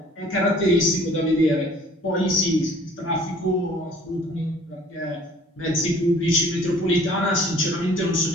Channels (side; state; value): both; normal; correlation 0.53